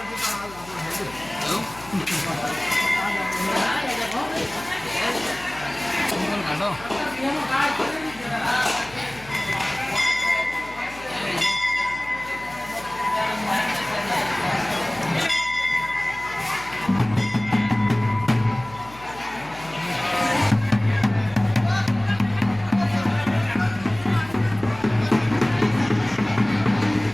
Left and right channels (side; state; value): left; noise; hum, 20 dB below the sound